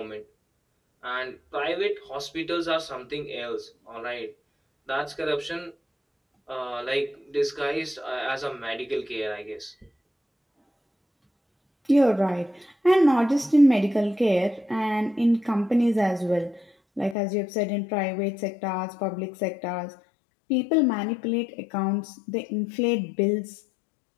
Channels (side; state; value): right; drops out; at 17.2 s